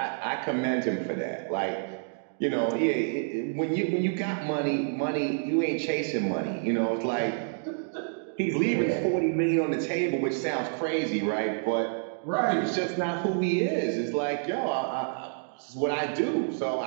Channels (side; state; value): left; silent; digital silence